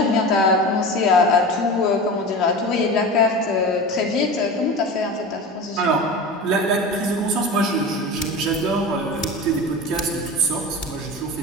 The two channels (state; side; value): normal; both; correlation 0.30